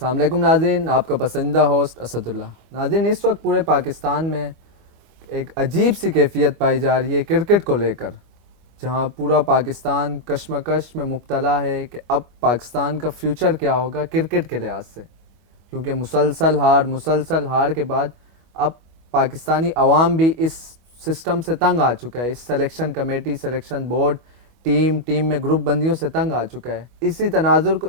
علیکم ناظرین، آپ کا پسندیدہ ہوسٹ اسد اللہ۔ ناظرین، اس وقت پورے پاکستان میں ایک عجیب سی کیفیت پائی جا رہی ہے کرکٹ کو لے کر، جہاں پورا پاکستان کشمکش میں مبتلا ہے کہ اب پاکستان کا فیوچر کیا ہوگا کرکٹ کے لحاظ سے، کیونکہ مسلسل ہار کے بعد اب پاکستانی عوام بھی اس سسٹم سے تنگ آ چکا ہے، اس selection committee, selection board, team میں گروپ بندیوں سے تنگ آ چکا ہے۔ اسی تناظر کو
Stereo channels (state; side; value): late; left; 25 ms